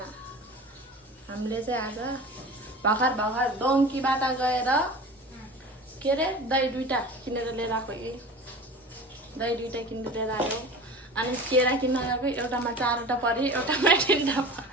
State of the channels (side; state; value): both; normal; correlation 0.37